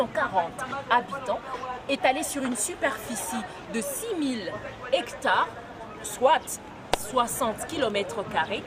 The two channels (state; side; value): identical; both; correlation 1.00